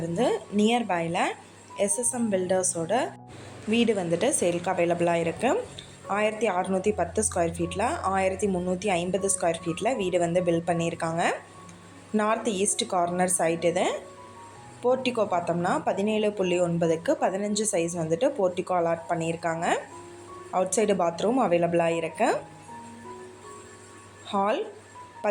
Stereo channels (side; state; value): both; identical; correlation 1.00